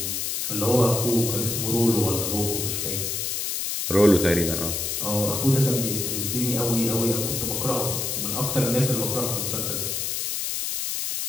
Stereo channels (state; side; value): noise; left; hiss, 1 dB below the sound